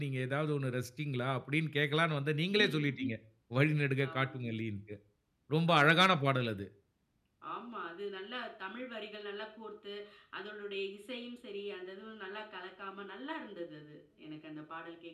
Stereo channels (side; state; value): both; identical; correlation 1.00